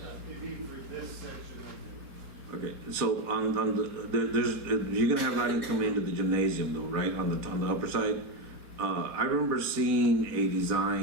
It'd be for this section of Okay, so on there's, you're gonna have lighting coming into the gymnasium though, right, on the upper side? I remember seeing a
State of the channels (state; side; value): late; left; 3.8 ms